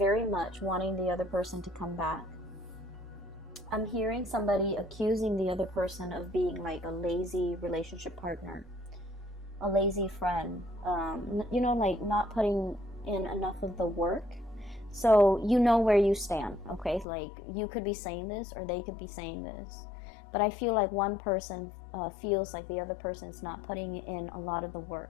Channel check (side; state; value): right; drops out; at 17.1 s